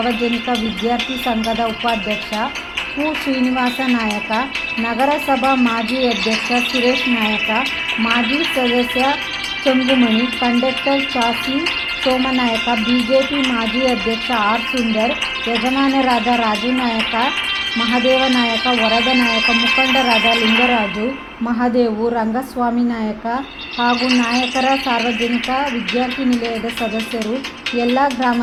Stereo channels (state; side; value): identical; both; correlation 1.00